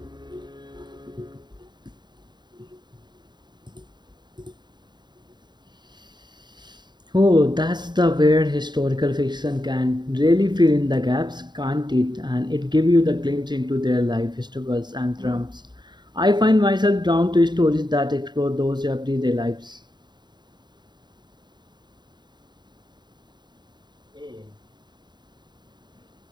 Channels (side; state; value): left; late; 0.21 ms